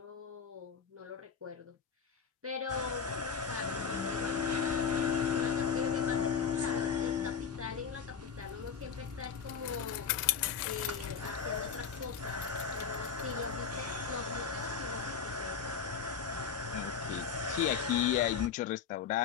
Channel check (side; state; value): right; quieter; 6.7 dB